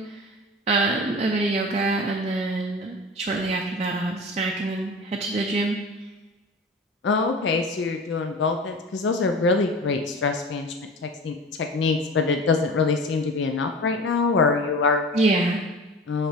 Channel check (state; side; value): normal; both; correlation 0.35